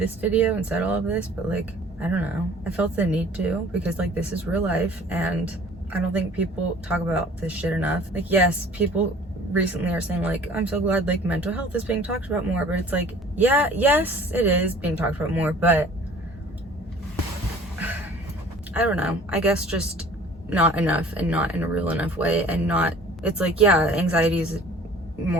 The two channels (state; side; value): normal; both; correlation 0.49